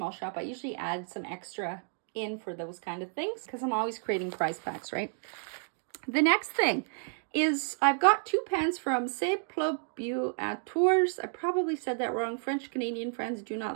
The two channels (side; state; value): left; silent; 57 dB below the other